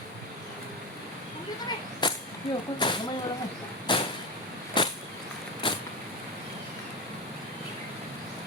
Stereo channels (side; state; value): both; normal; correlation 0.19